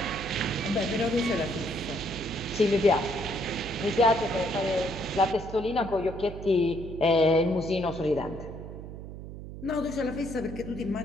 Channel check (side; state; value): right; noise; hum, 11 dB below the sound